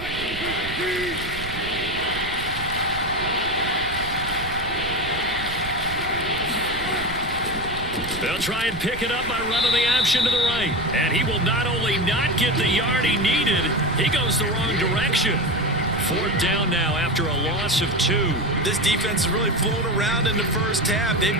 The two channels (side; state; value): right; noise; rumble, 10 dB below the sound